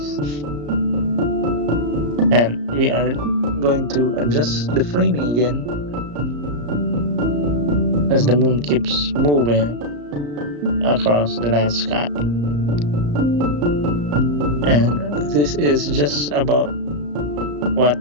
And we are going to adjust the framing again as the moon keeps moving across the night sky. And this is just about what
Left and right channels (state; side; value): late; left; 34 ms